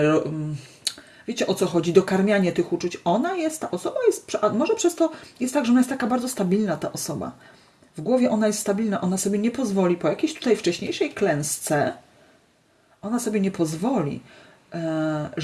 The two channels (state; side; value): identical; both; correlation 1.00